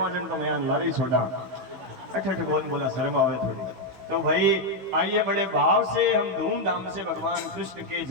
जन तो मैं लारी छोड़ा, अठ कौन बोला, शर्म आवे थोड़ी। तो भाई आइए बड़े भाव से हम धूमधाम से भगवान कृष्ण के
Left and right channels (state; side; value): late; left; 16 ms